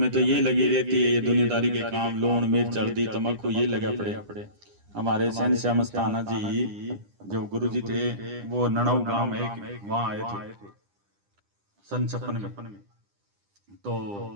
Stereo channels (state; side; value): late; left; 9.9 ms